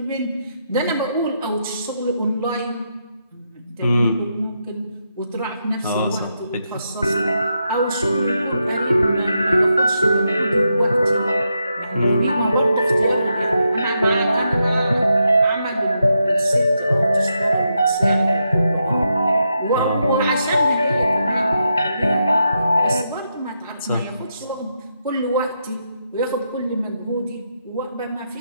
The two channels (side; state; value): both; inverted; correlation -0.83